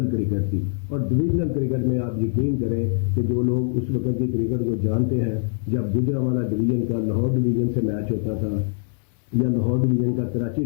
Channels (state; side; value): silent; right; digital silence